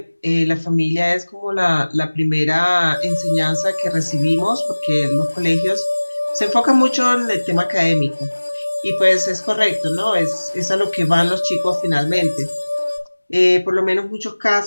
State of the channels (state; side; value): inverted; both; correlation -1.00